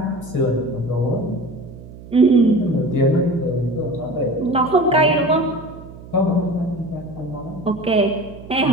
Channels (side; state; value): right; noise; hum, 17 dB below the sound